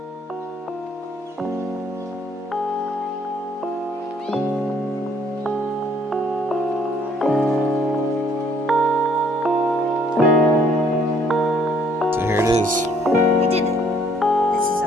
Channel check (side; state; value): both; normal; correlation 0.63